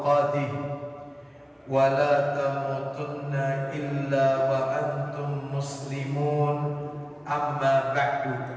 wa la tamutunna illa wa antum muslimun. Amma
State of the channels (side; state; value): both; identical; correlation 1.00